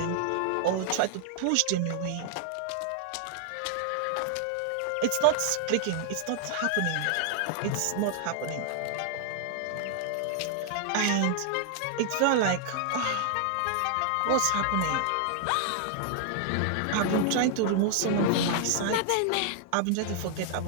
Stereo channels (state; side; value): different; both; correlation 0.00